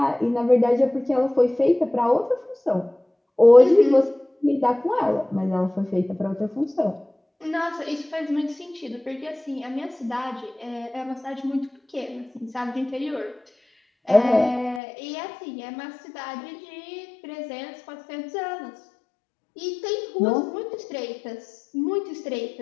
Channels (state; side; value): drops out; right; at 14.8 s